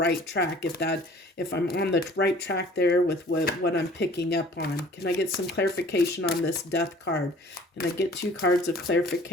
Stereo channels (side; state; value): both; normal; correlation 0.50